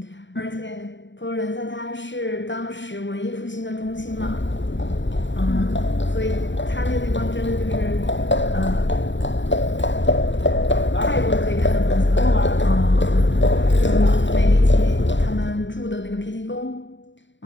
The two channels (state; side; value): late; right; 0.54 ms